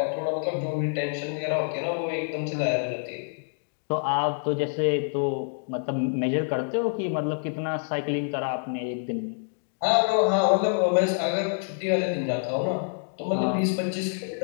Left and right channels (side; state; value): right; silent; digital silence